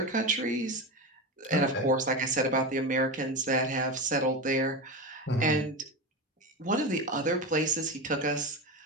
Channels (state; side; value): normal; both; correlation 0.20